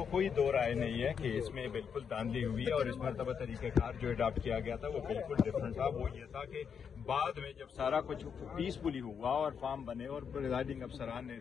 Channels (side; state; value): right; quieter; 6.9 dB